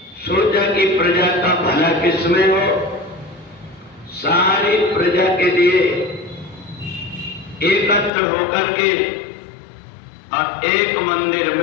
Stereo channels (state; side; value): drops out; right; at 8.1 s